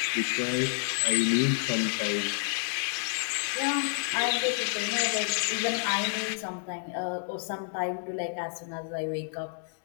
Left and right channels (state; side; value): silent; right; digital silence